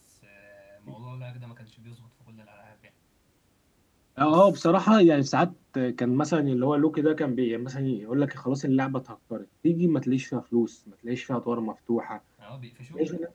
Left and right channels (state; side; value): identical; both; correlation 1.00